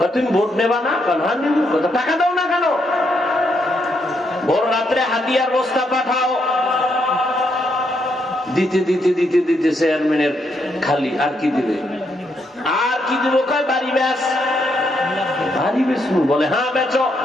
তুমি ভোট নেবা না? টাকা দাও না কেন? ভোর রাত্রে হাতিয়ার বস্তা পাঠাও, দিতে দিতে দিতে দিতে চেয়ারম্যানের খালি। আর কি দিবে? আর কি দিব? কয় বাড়ি বেচ। বাড়ি বেচবো? বলে হ্যাঁ বেচো।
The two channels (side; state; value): both; normal; correlation 0.77